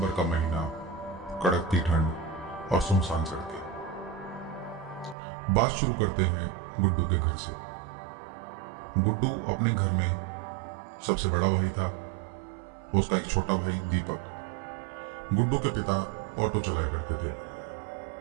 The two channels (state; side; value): drops out; left; at 5.2 s